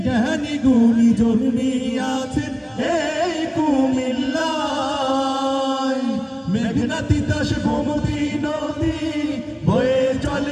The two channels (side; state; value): both; identical; correlation 1.00